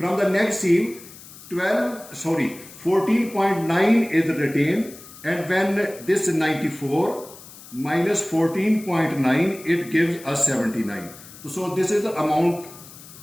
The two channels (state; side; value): noise; left; hiss, 18 dB below the sound